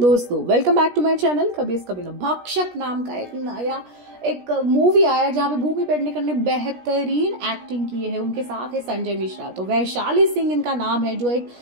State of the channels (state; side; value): late; left; 17 ms